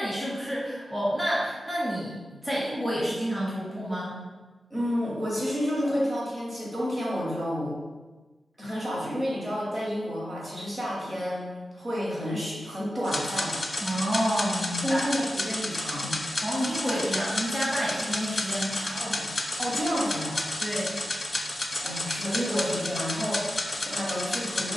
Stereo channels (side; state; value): both; normal; correlation 0.92